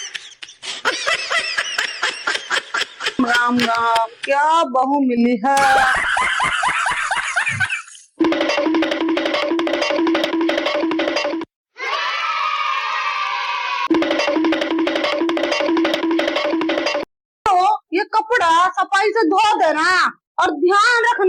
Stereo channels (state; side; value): identical; both; correlation 1.00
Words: राम राम, क्या बहू मिली है। तो ये कपड़ा सफाई से धो देना और ध्यान